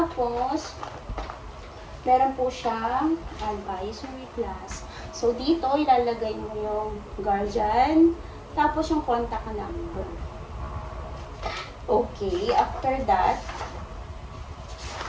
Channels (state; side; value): identical; both; correlation 1.00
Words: meron po siyang advisory class. So, dito, ilalagay mo yung guardian, tapos yung contact number. Okay, after that,